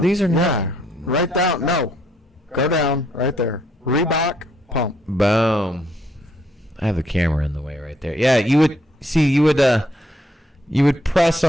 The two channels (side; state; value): both; normal; correlation 0.70